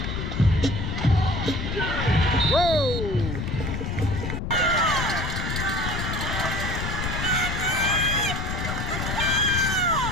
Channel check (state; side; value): noise; left; rumble, 3 dB below the sound